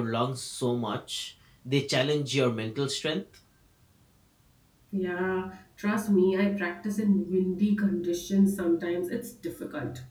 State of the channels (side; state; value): both; identical; correlation 1.00